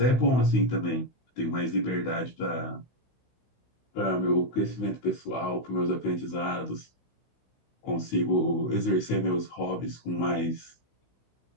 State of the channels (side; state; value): right; late; 16 ms